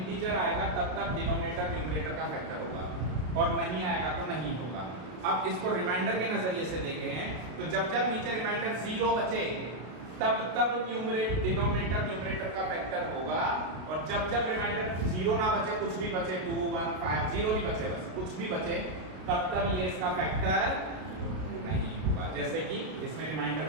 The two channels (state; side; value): late; left; 33 ms